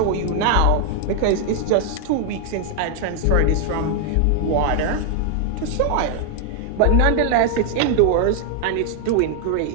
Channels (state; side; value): different; both; correlation 0.00